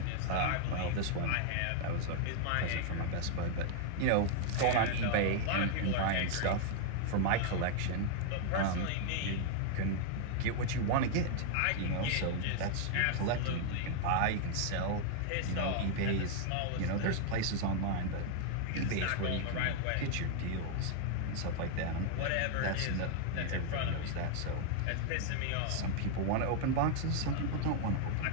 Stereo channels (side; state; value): both; different; correlation -0.01